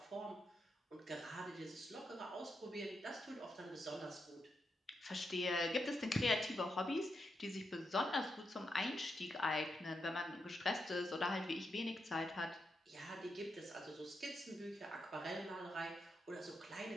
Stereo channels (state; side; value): normal; both; correlation 0.84